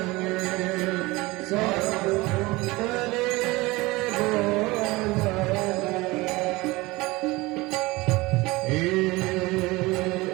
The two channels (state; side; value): quieter; left; 21.6 dB